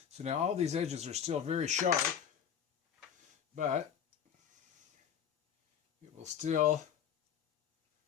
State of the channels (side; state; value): right; quieter; 8.5 dB